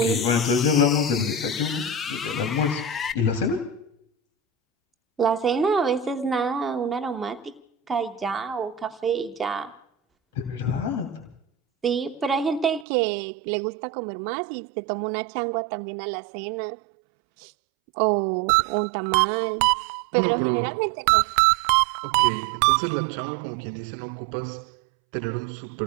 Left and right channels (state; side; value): drops out; left; at 12.9 s